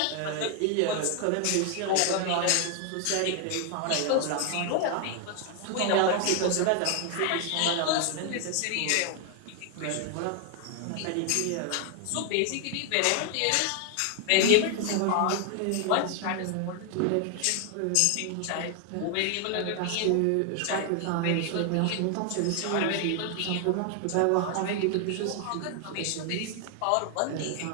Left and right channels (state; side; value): different; both; correlation 0.00